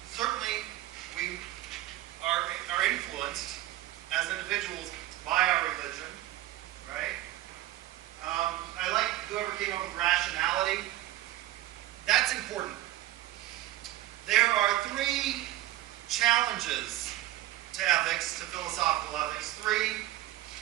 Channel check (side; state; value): left; quieter; 15.3 dB